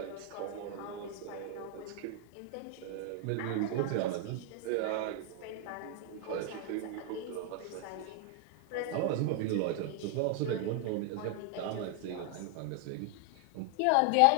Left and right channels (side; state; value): both; different; correlation 0.00